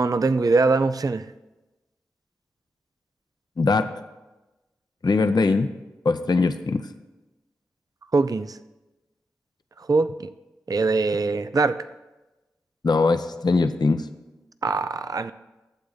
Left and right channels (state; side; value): normal; both; correlation 0.82